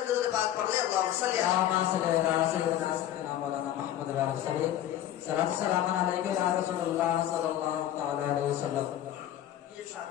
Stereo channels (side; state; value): right; quieter; 12.0 dB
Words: کے پاک پڑھ لے۔ اللہم صلی علی سیدنا مولانا محمد السلام علیکم یا رسول اللہ صلی اللہ علیہ وسلم۔ یہ